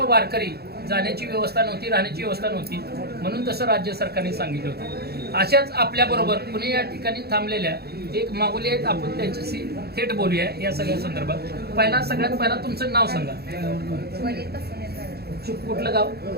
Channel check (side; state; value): left; late; 0.46 ms